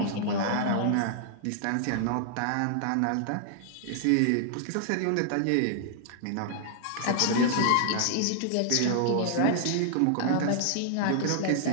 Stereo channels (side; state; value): both; different; correlation -0.01